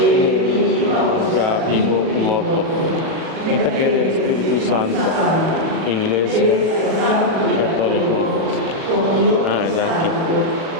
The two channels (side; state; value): left; late; 37 ms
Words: ya vivo y muerto. Quita que el Espíritu Santo, Iglesia Católica. Ah, es aquí.